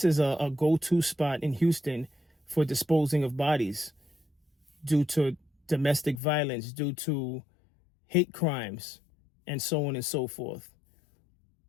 is a go-to spot in Houston for disposing of bodies due to domestic violence, due to hate crimes, and so on and so forth.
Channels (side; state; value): right; drops out; at 6.2 s